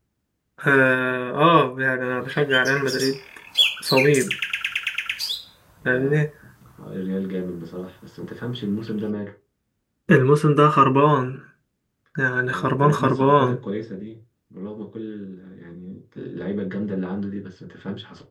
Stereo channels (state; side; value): identical; both; correlation 1.00